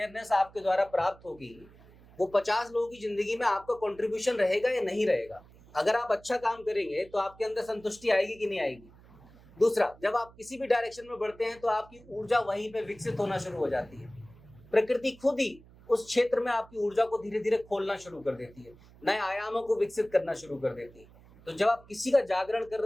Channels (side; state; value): right; noise; hum, 24 dB below the sound